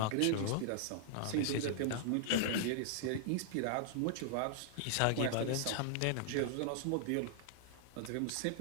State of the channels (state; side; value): different; both; correlation -0.01